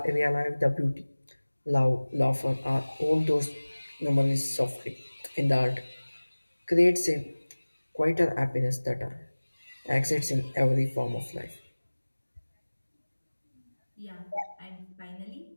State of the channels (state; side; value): inverted; both; correlation -1.00